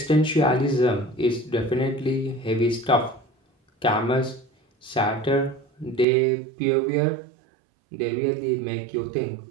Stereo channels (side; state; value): left; drops out; at 6.1 s